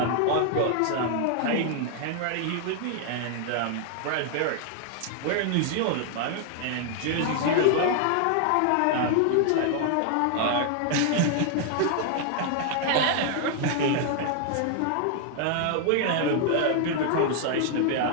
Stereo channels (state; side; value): different; both; correlation 0.00